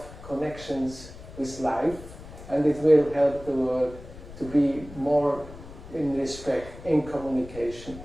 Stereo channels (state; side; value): noise; left; rumble, 16 dB below the sound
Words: connections with life, and it will help the world to be more in respect, in communication,